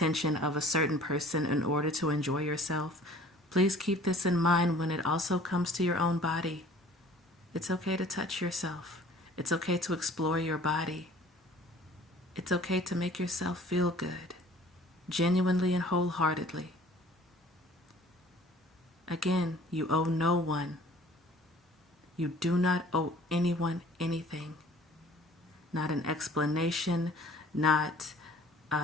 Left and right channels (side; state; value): both; normal; correlation 0.51